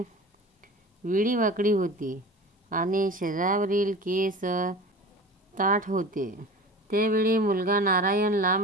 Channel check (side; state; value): both; normal; correlation 0.36